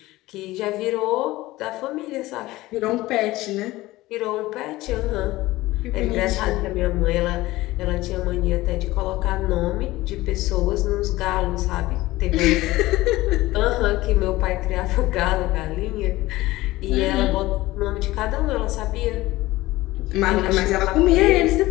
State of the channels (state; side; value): quieter; right; 18.2 dB